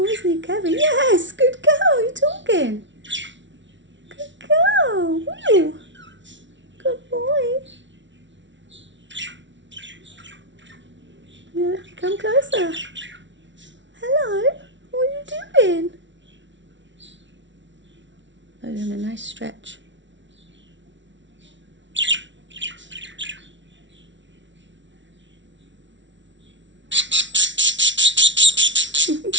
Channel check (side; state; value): left; late; 0.54 ms